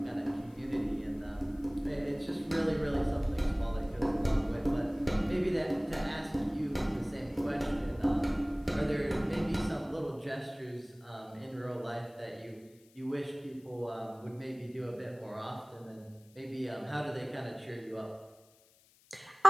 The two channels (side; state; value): left; noise; hiss, 29 dB below the sound